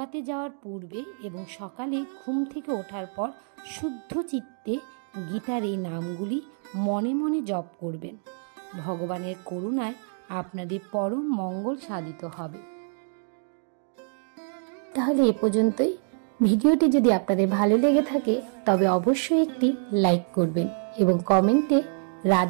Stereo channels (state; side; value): silent; left; 60 dB below the other